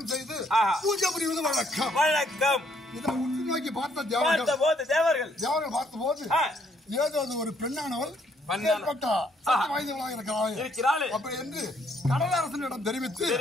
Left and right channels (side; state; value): both; normal; correlation 0.69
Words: பூஜை புரிவது வழக்கம். இதை உற்று நோக்கி பார்த்த தேவர்கள் பார்த்த போது ஏதோ ஒரு பெண்ணானவள் இருக்கிறாள் அப்படி என்று கடலரசனிடம் தெரிவிக்க